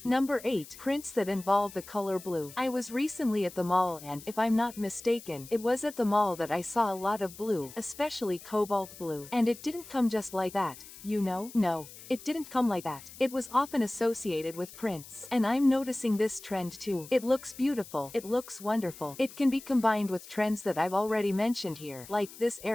Number 8. Prints that involve the color blue. I was recently at the mall and, if I'm not mistaken, it was at the mall that I saw a lot of blue, especially cobalt blue. And it didn't come just like that, you know? No. It didn't come like that. It was often associated with prints. And I'm noticing this trend too. It looks beautiful. It looks wonderful. It can be combined with trends that I've already mentioned here, like this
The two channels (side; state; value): left; noise; hiss, 17 dB below the sound